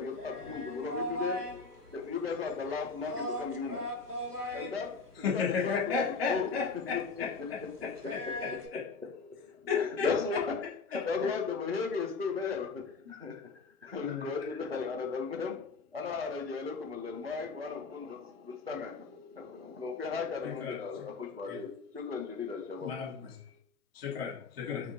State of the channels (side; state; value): right; quieter; 4.7 dB